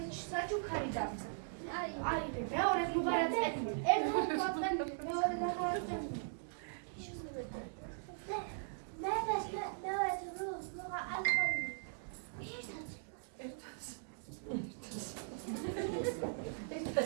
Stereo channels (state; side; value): silent; left; digital silence